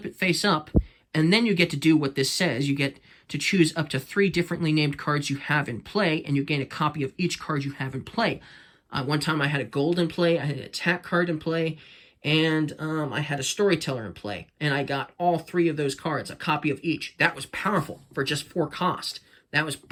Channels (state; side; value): identical; both; correlation 1.00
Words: it face up. And then you get to do what this says. You get to choose up to 3 differently named cards you have in play, and you gain a copy of each card you have in play. One time I had a gold in play, I had an attack card in play, and I had a storyteller in play. And I got all 3 of those cards, a copy of each. That was powerful for just 4 cost. That was